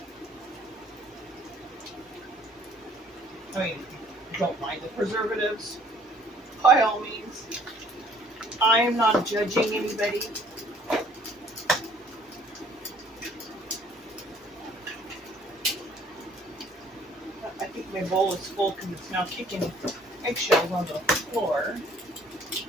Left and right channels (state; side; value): normal; both; correlation 0.58